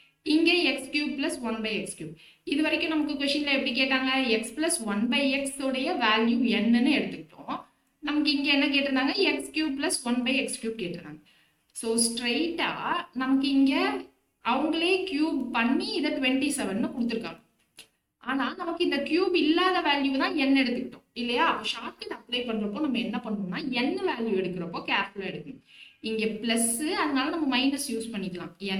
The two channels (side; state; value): both; identical; correlation 1.00